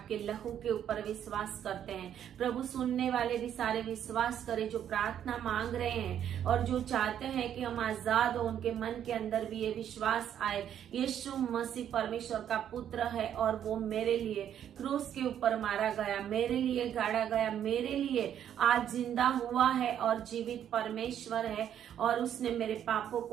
लहू के ऊपर विश्वास करते हैं। प्रभु, सुनने वाले भी सारे विश्वास करें जो प्रार्थना मांग रहे हैं और जो चाहते हैं कि हम आजाद हो, उनके मन के अंदर भी ये विश्वास आए, यीशु मसीह परमेश्वर का पुत्र है और वो मेरे लिए क्रूस के ऊपर मारा गया, मेरे लिए गाड़ा गया, मेरे लिए आज जिंदा हुआ है और जीवित परमेश्वर है और उसने मेरे पापों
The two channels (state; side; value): quieter; left; 9.8 dB